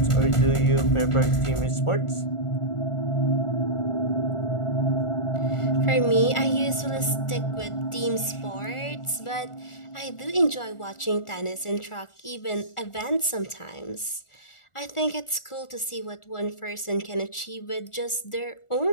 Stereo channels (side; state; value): right; late; 1.4 ms